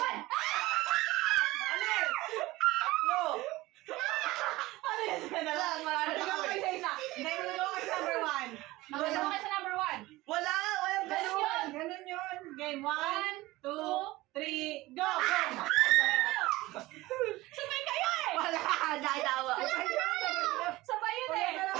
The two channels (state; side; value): quieter; left; 19.1 dB